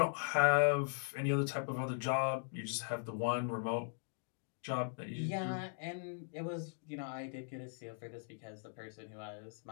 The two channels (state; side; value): silent; right; digital silence